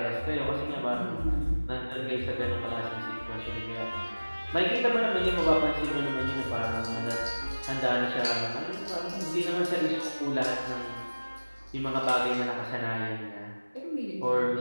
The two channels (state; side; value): inverted; both; correlation -1.00